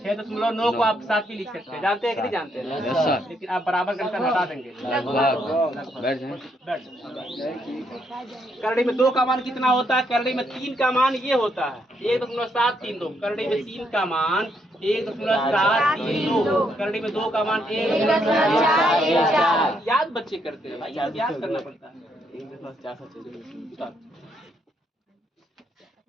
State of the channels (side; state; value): both; normal; correlation 0.75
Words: को आप 7 भी लिख सकते हैं, जानते हैं कि नहीं जानते हैं? Yes sir. लेकिन आप बराबर का निशान हटा देंगे। लगभग बैठ जाएं। बैठ। करड़ी में 2 का मान कितना होता है? करड़ी में 3 का मान ये होता है 1.732। करड़ी में 3 का मान 1.732। करड़ी में 2 का मान 1.414। याद बच्चे करते हैं भाई, याद करना पड़ता है।